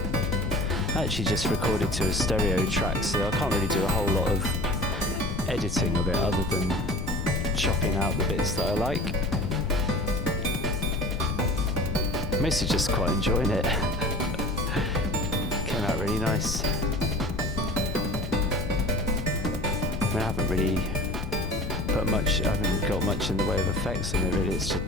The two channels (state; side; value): noise; left; rumble, 6 dB below the sound